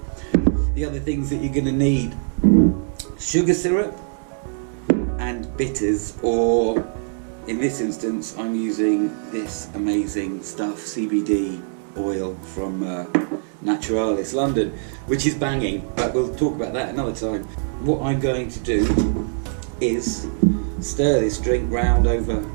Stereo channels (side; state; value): left; silent; 60 dB below the other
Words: The other things that you're going to need: sugar syrup and bitters, or in this instance I'm using this amazing stuff, CBD oil from Naturalis London, which is banging, but we'll talk about that another time. What I'm going to do is stir this drink round over